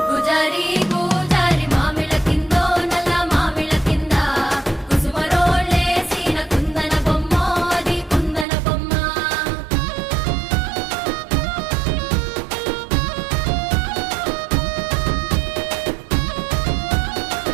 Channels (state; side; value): drops out; left; at 8.5 s